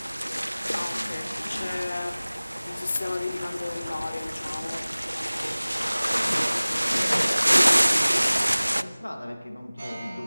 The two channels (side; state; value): both; inverted; correlation -0.99